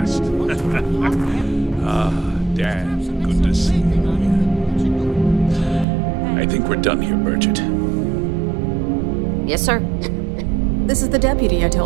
Dad, good to see you again. I think we're done here, Bridget. Yes, sir. This is the deputy I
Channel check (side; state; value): left; drops out; at 5.9 s